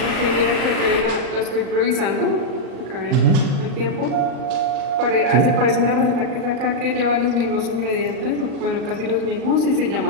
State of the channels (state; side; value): late; left; 38 ms